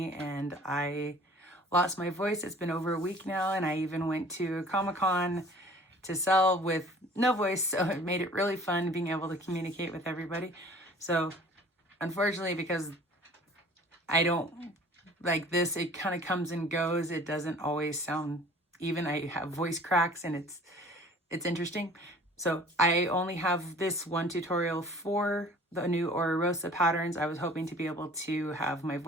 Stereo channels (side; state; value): both; normal; correlation 0.49